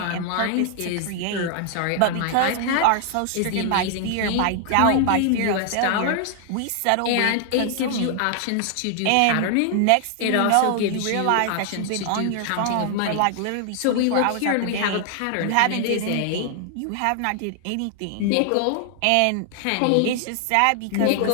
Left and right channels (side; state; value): both; different; correlation 0.00